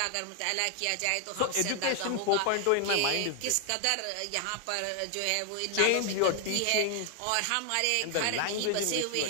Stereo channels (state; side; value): different; both; correlation 0.00